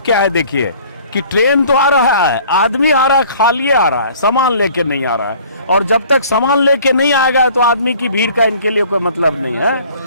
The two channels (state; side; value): inverted; both; correlation -0.52